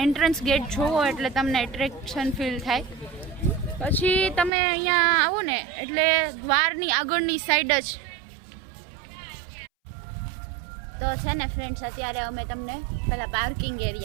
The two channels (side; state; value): left; drops out; at 4.5 s